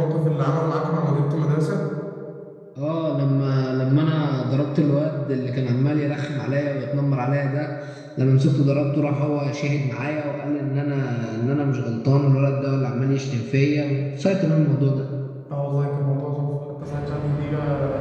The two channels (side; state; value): both; identical; correlation 1.00